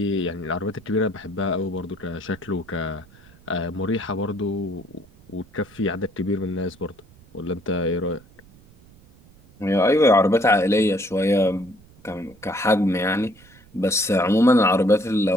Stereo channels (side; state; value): right; noise; rumble, 26 dB below the sound